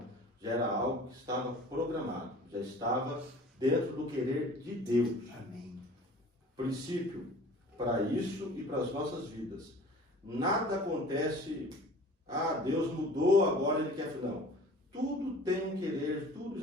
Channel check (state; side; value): normal; both; correlation 0.45